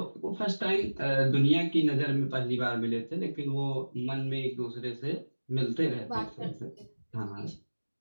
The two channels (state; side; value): inverted; both; correlation -1.00